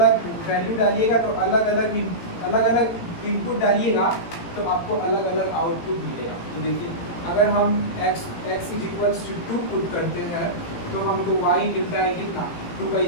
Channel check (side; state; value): right; late; 18 ms